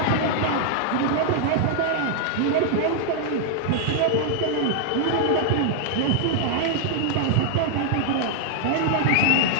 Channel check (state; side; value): different; both; correlation 0.00